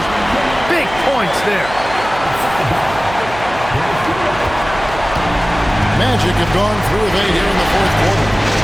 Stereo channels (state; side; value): noise; right; hum, 13 dB below the sound